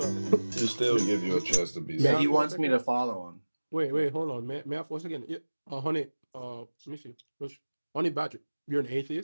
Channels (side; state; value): both; inverted; correlation -1.00